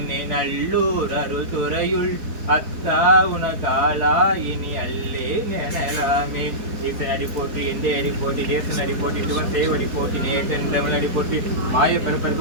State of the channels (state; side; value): late; left; 4.3 ms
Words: நல்லூர் அருள் துறையுள் அத்தா உனகாலா இனி அல்லே நெனலாமே ஈசன் அடி போற்றி எந்த அடி போட்டி தேசன் அடி போட்டி சிவன் தேவடி போட்டி நேசன் தமிழ் அடி போற்றி மாய